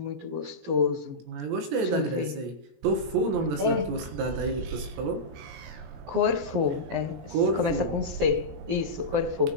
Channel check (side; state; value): left; late; 17 ms